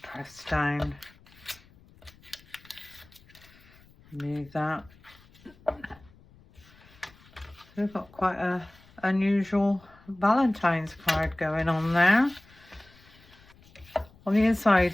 press down. Move that. So we've got quite a unusual Valentine's card going on there. On the inside,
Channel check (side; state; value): left; noise; rumble, 26 dB below the sound